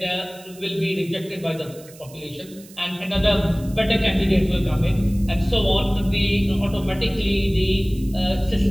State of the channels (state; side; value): noise; right; hiss, 22 dB below the sound